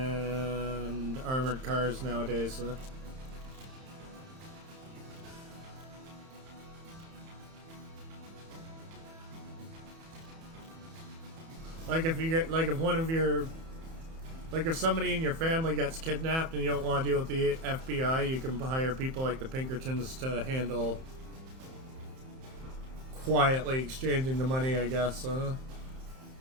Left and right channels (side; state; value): left; late; 31 ms